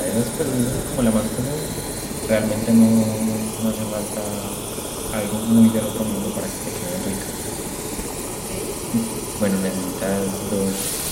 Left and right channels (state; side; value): identical; both; correlation 1.00